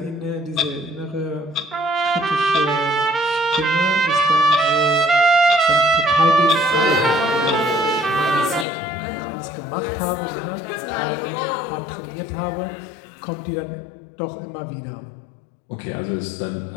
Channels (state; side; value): drops out; right; at 8.7 s